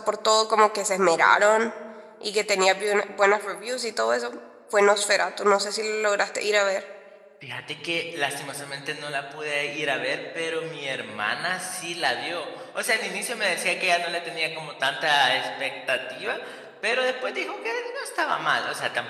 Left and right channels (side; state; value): both; identical; correlation 1.00